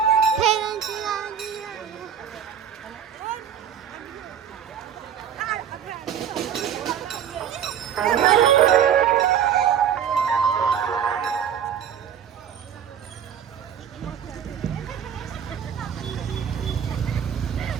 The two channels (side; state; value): left; quieter; 8.6 dB